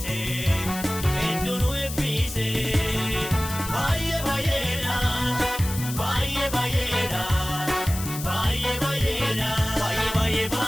Hedduunu eebbise Baay'ee baay'eedha Baay'ee baay'eedha Baay'ee baay'eedha Baay'ee baay'ee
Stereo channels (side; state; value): left; noise; hiss, 9 dB below the sound